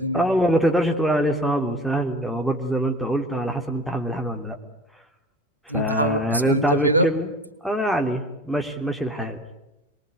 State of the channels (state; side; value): normal; both; correlation 0.41